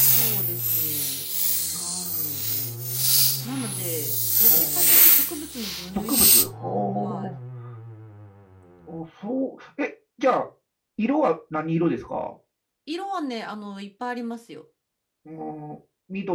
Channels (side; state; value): both; identical; correlation 1.00